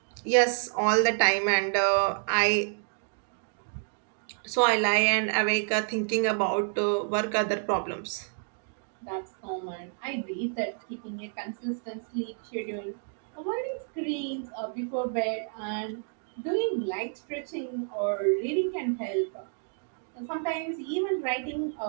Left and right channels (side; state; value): left; silent; 58 dB below the other